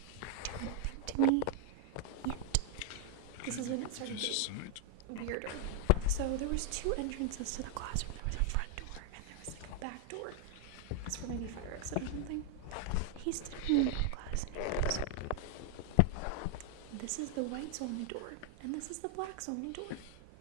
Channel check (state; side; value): different; both; correlation 0.00